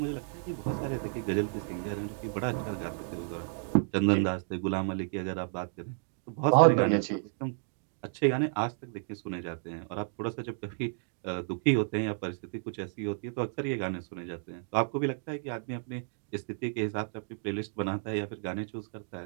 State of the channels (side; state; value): left; silent; 56 dB below the other